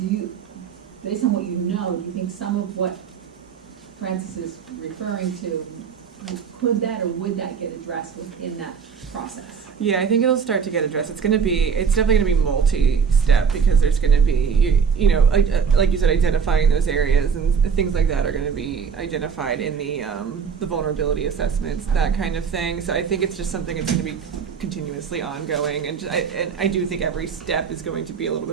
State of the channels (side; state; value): left; quieter; 6.4 dB